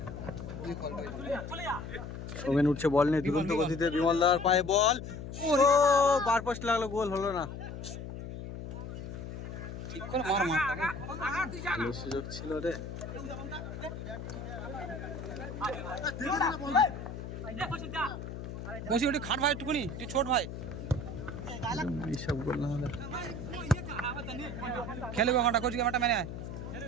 সোমেন উঠছে বল নিয়ে দুরন্ত গতিতে বিমলদার পায়ে বল ও বার পোস্ট লাগলো গোল হলো না ঠিক করে মার ভালো সুযোগ ছিল রে বসি ওটা খাট ভাই একটুকুনি তুই ছোট ভাই এইসব গোল না হলে খেলবে ঘন্টা কোচিং মাঠটা মেনে আয়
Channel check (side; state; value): left; noise; hum, 8 dB below the sound